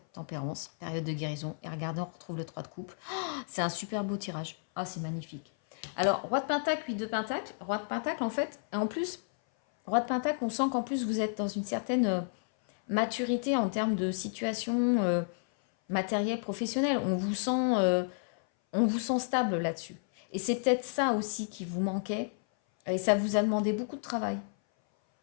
tempérance, période de guérison. Et regardez, on retrouve le 3 de coupe. Oh, c'est un super beau tirage. Ah, c'est magnifique. Alors, roi de pentacle, 8 de pentacle. Roi de pentacle, en fait, et en plus... Roi de Pentacle, on sent qu'en plus vous êtes dans une certaine maturité en termes de situation matérielle, professionnelle. On vous sent stable là-dessus. Et c'est peut-être ça aussi qui vous manquait. Et ça vous a demandé beaucoup de travail.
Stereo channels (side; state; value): right; silent; 57 dB below the other